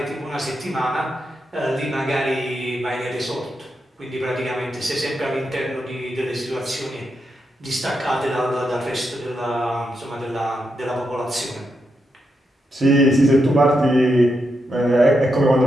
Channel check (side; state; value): both; normal; correlation 0.84